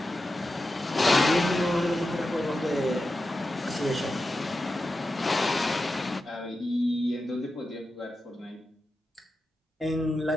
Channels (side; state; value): both; normal; correlation 0.91